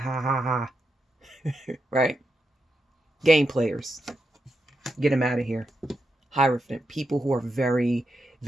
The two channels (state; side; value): normal; both; correlation 0.85